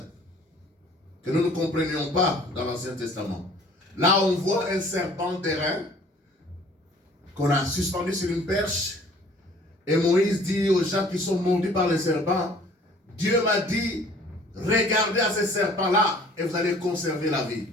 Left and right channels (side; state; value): both; normal; correlation 0.53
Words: que nous ne comprenions pas dans l'Ancien Testament. Là, on voit un serpent d'airain qu'on a suspendu sur une perche. Et Moïse dit aux gens qui sont mordus par le serpent, Dieu m'a dit, regardez à ce serpent-là et vous allez conserver la vie.